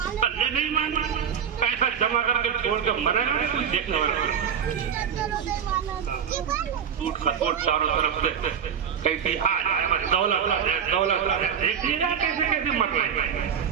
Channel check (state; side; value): quieter; left; 7.9 dB